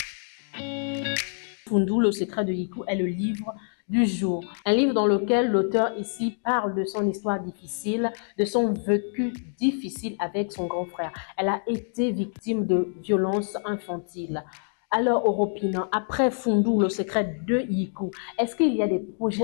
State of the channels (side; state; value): right; silent; digital silence